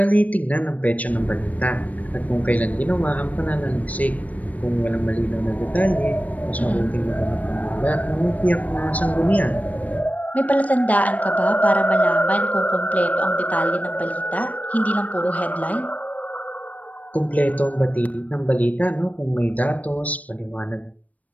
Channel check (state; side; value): late; right; 0.071 ms